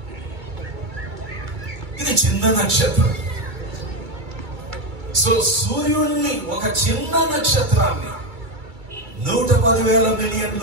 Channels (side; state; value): left; late; 2.3 ms